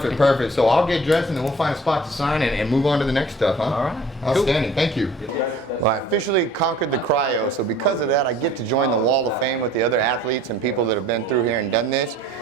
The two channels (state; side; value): normal; both; correlation 0.51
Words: So I'll get dressed and then we'll find a spot to sign and move on to the next stuff, huh? All right. Outstanding. Thank you. Well, I officially conquered the cryo, so because of that, I get to join the Wall of Fame with the other athletes and people that have been through here and done this.